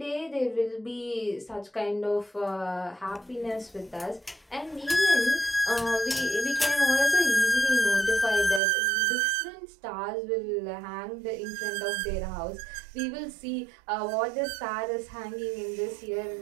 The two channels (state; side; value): drops out; left; at 8.6 s